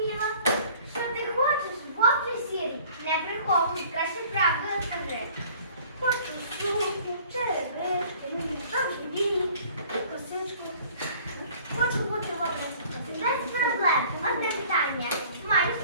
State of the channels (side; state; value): both; inverted; correlation -0.51